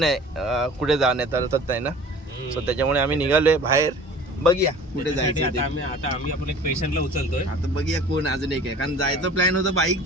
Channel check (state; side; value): normal; both; correlation 0.44